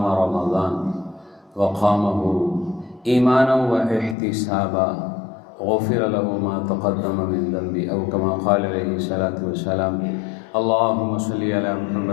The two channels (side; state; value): right; drops out; at 4.2 s